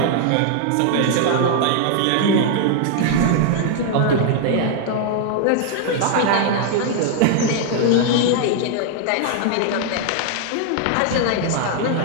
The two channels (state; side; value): different; both; correlation 0.00